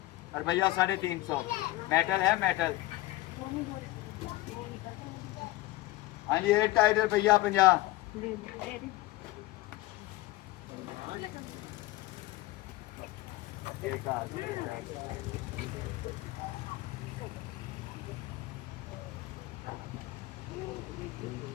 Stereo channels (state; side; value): quieter; right; 18.3 dB